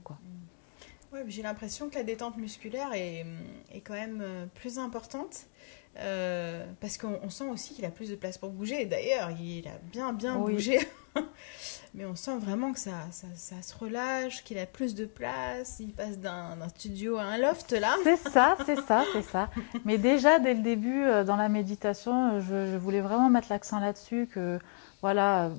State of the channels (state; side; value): silent; right; digital silence